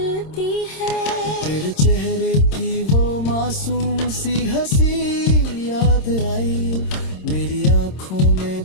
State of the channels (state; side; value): late; right; 26 ms